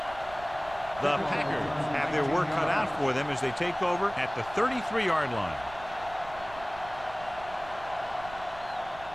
The Packers have their work cut out for them as they take over at the 33-yard line.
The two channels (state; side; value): noise; right; rumble, 18 dB below the sound